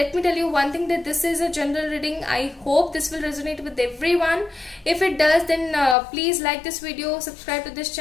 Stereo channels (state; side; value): drops out; right; at 6.0 s